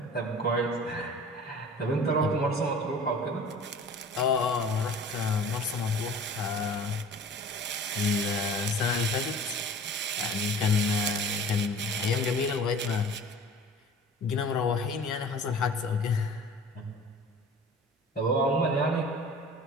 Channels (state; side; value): normal; both; correlation 0.43